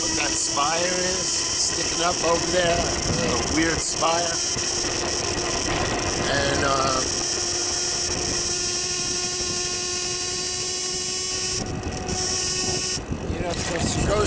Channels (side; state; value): both; identical; correlation 1.00